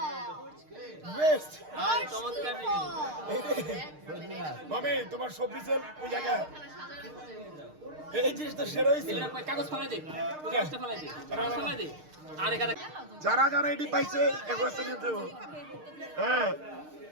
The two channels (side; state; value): left; late; 6.5 ms